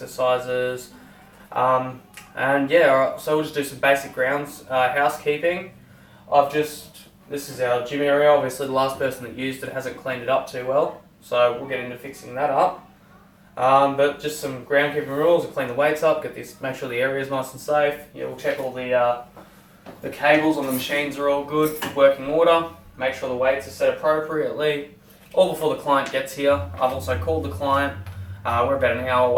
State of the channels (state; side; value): identical; both; correlation 1.00